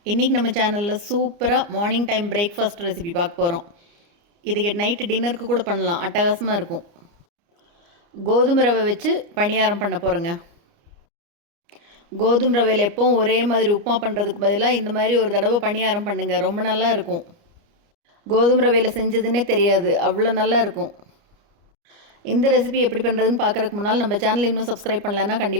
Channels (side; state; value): left; late; 29 ms